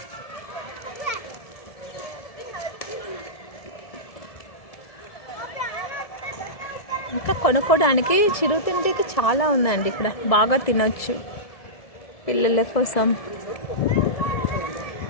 ఇంకా కొనుక్కోవడానికి చిరుతిండికి చాలా ఉందండి ఇక్కడ. బాగా తినొచ్చు పిల్లల కోసం.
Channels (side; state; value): right; late; 1.7 ms